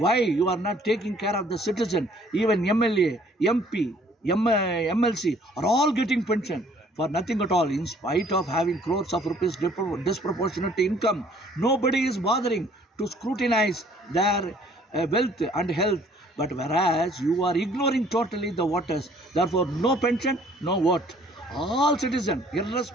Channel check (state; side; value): normal; both; correlation 0.58